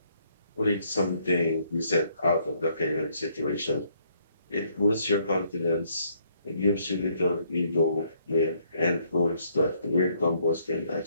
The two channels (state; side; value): inverted; both; correlation -0.68